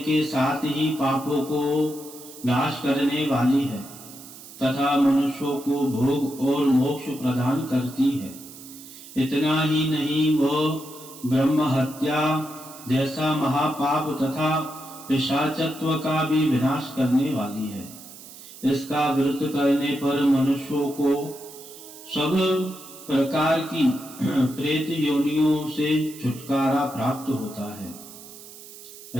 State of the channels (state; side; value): noise; right; hiss, 17 dB below the sound